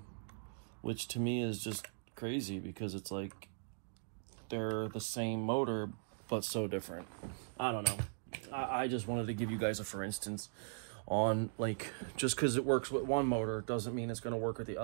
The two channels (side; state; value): left; silent; digital silence